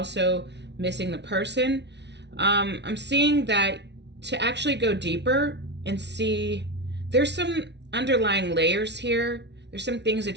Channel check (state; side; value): late; left; 0.50 ms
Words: missing the person. I'm seeing that to actually go deeper and see, there's some underlying layers here. There's some things